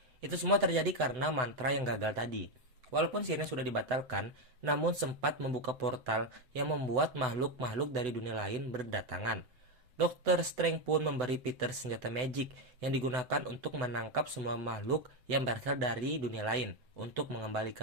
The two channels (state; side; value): late; left; 7.9 ms